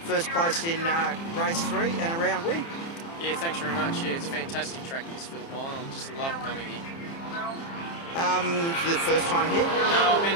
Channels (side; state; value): right; late; 30 ms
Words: first place in race 3 and a round win. Yeah, thanks very much. Yeah, it's a fantastic track, this Phillip Island. I just love coming here. The first time here? No, I've